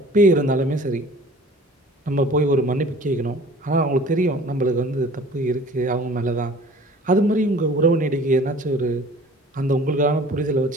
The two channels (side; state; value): both; normal; correlation 0.47